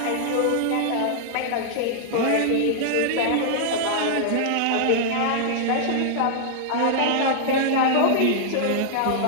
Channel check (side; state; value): both; different; correlation -0.01